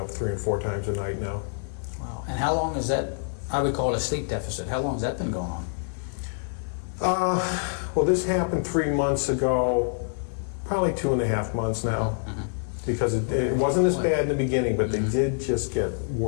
3 and 4 times a night now. Wow. And how long is that? I would call it a sleep deficit. How long has that been going on? Well, this happened 3 months ago, probably 2.5 months now. Because it wasn't as bad in the beginning, but they did just get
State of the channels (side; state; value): right; silent; digital silence